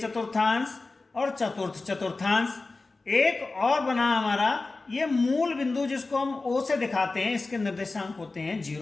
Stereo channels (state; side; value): quieter; right; 3.5 dB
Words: और चतुर्थ चतुर्थांश। एक और बना हमारा ये मूल बिंदु, जिसको हम ओ से दिखाते हैं, इसके निर्देशांक होते हैं